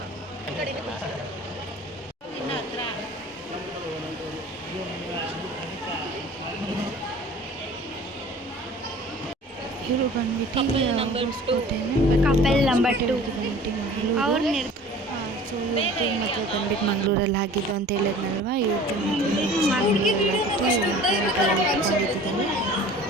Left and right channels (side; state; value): both; normal; correlation 0.45